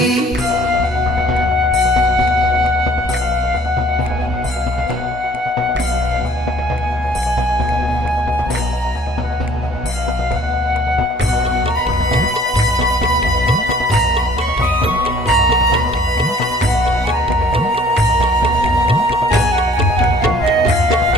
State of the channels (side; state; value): both; normal; correlation 0.55